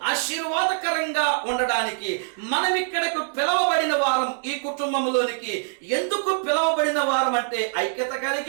ఆశీర్వాదకరంగా ఉండడానికి. మనం ఇక్కడకు పిలవబడిన వారం, ఈ కుటుంబంలోనికి ఎందుకు పిలవబడిన వారం అంటే ఐక్యత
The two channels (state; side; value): silent; left; digital silence